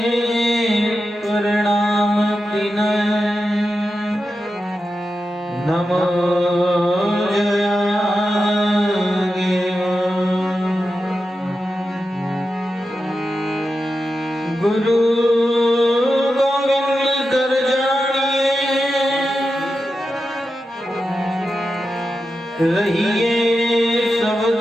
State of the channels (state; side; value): normal; both; correlation 0.90